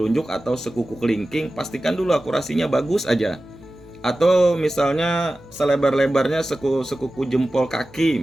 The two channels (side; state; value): right; noise; hum, 26 dB below the sound